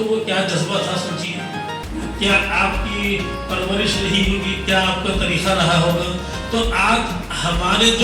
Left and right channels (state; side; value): identical; both; correlation 1.00